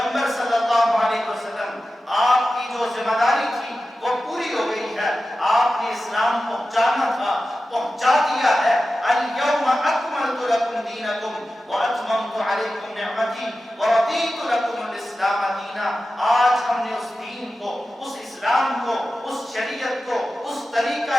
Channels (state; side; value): normal; both; correlation 0.94